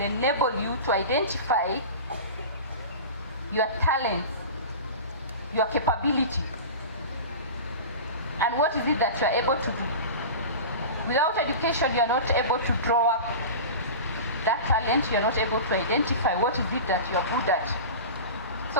you to identify your talents, your capability, and what is it that you are able to do. Without education, you are not able to draw up that talent, you are not able to identify what is it that you are good at.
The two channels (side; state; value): both; inverted; correlation -0.32